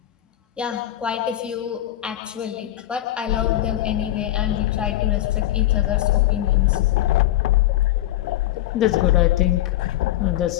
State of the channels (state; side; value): quieter; right; 14.0 dB